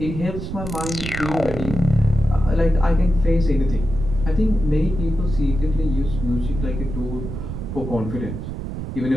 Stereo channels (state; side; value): noise; right; rumble, 7 dB below the sound